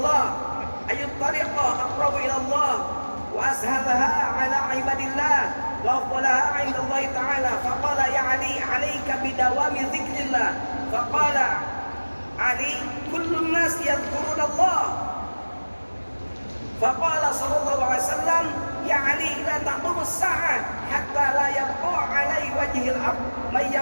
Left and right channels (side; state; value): both; inverted; correlation -1.00